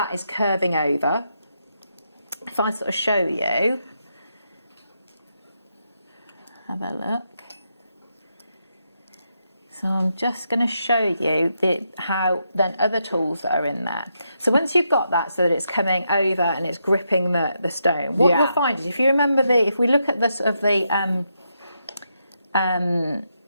is curving over, if I sort of show you, have a look. So I'm just going to show you how then other tools that are in there. So once you've got that so that it's coming over and it's gripping the stone, what you'll find is, if you remember if we look at the sort of the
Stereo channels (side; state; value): both; inverted; correlation -0.82